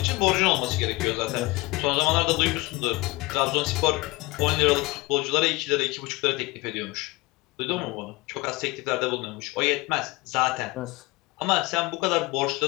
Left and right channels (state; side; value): quieter; right; 22.7 dB